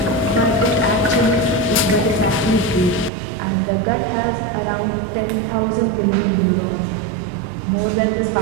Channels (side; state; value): left; drops out; at 3.1 s